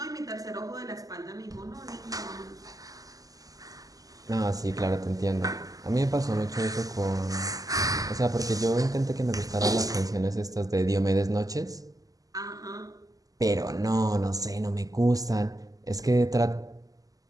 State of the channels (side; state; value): left; late; 0.17 ms